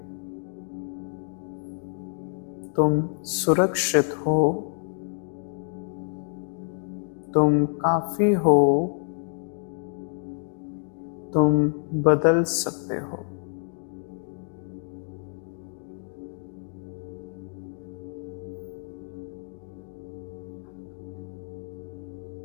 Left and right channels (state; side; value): silent; right; 57 dB below the other